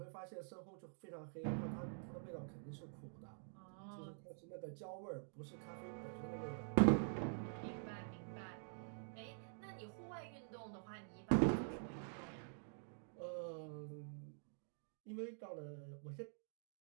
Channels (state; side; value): silent; left; digital silence